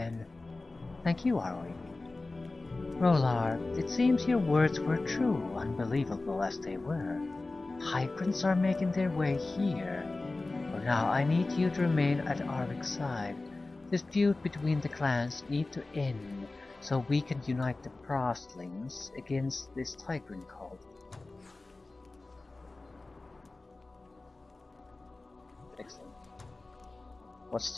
Thank you, Arwi. Rolar, it seems your words were true, unbelievable as they were. Tyrants are making their way here. For now, I need you to remain at Arvik's side. This feud between the clans need to end, so we can unite the Prostlings against this Tyrant cult. Excellent. What's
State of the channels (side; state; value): right; quieter; 3.2 dB